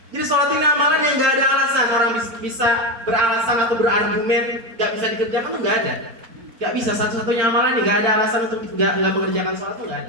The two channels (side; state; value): left; late; 4.4 ms